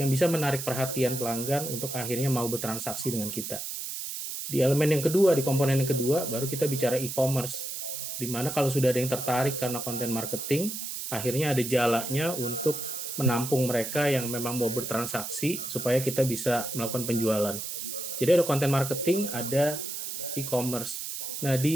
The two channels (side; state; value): right; noise; hiss, 6 dB below the sound